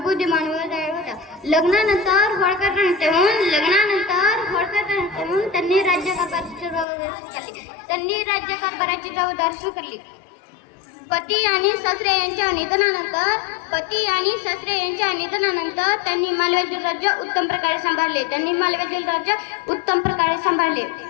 व दयाळू होत्या. लग्नानंतर होळकर त्यांनी राज्यकारभाराची जबाबदारी स्वीकारली. पती आणि सासरे यांच्या निधनानंतर त्यांनी मालव्यातील राज्य उत्तम प्रकारे सांभाळले.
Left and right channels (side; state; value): right; drops out; at 6.9 s